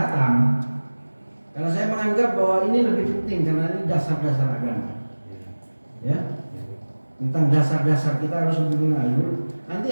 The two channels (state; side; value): inverted; both; correlation -1.00